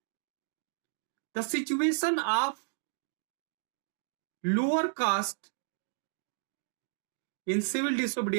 the situation of lower caste in civil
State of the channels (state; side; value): silent; left; digital silence